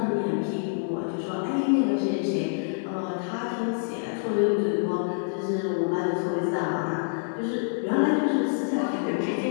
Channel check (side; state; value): right; silent; digital silence